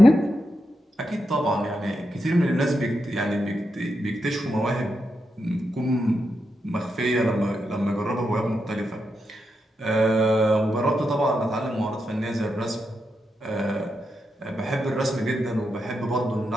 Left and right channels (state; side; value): normal; both; correlation 0.85